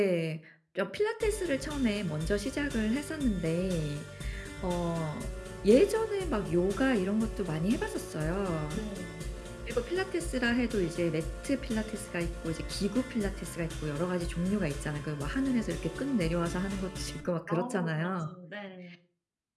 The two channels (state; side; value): identical; both; correlation 1.00